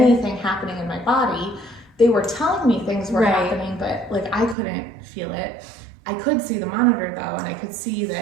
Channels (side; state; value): left; drops out; at 4.5 s